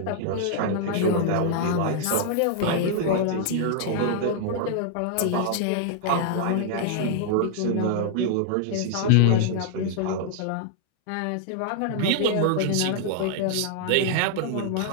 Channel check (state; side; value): different; both; correlation -0.01